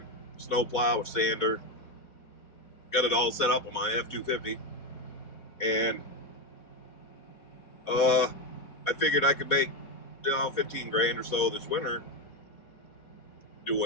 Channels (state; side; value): late; right; 4.1 ms